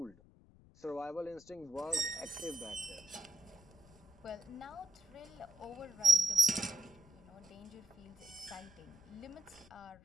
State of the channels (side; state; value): left; noise; rumble, 24 dB below the sound